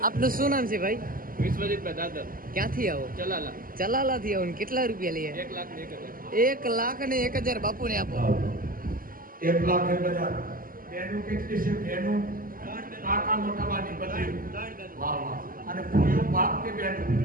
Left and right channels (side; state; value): left; late; 0.41 ms